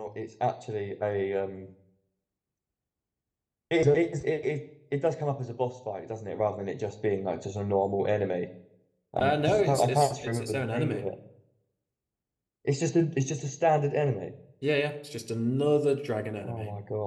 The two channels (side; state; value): both; identical; correlation 1.00